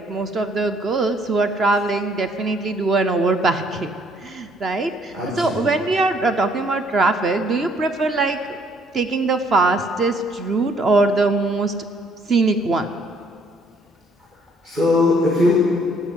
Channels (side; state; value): both; normal; correlation 0.64